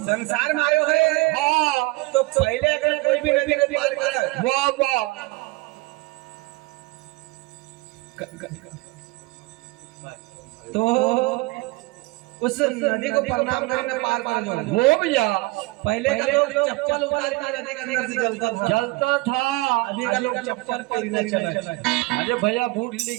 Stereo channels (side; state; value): left; quieter; 23.3 dB